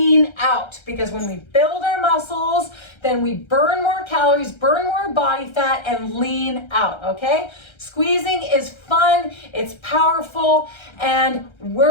out. Because when we build our muscles, then we burn more calories, burn more body fat, and lean out, okay? Squeezing is fun, it's powerful, and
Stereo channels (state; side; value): late; right; 1.3 ms